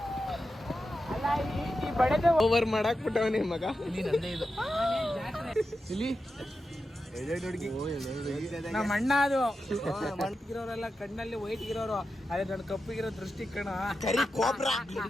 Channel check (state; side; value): normal; both; correlation 0.90